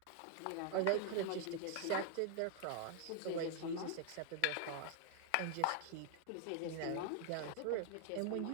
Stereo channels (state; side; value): different; both; correlation 0.00